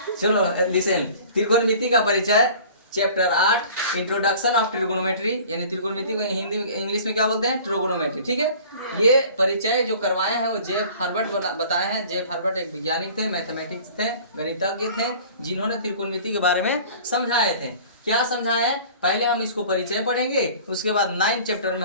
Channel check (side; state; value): both; inverted; correlation -0.46